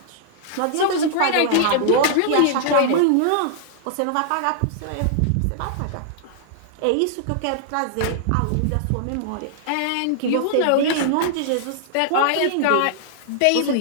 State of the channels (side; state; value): both; different; correlation -0.01